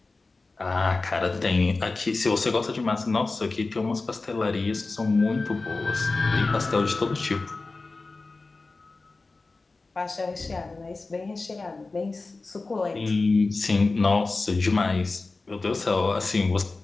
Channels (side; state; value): right; quieter; 3.6 dB